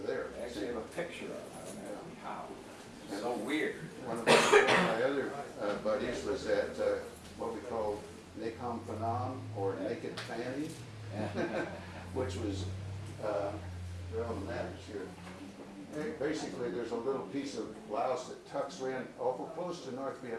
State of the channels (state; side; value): identical; both; correlation 1.00